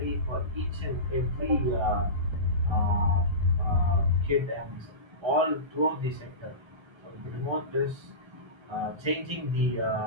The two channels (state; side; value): late; left; 1.3 ms